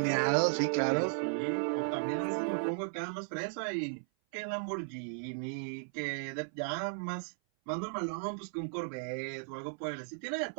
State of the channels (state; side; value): silent; left; 54 dB below the other